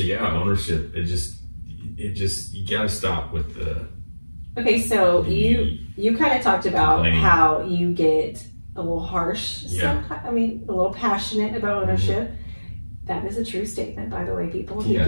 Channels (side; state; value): both; inverted; correlation -1.00